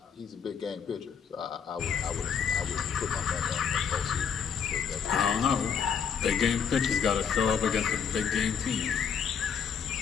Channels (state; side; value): quieter; right; 7.1 dB